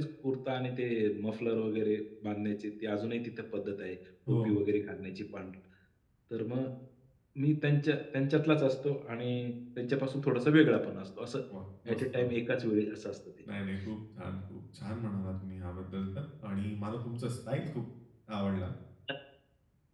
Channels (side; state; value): both; identical; correlation 1.00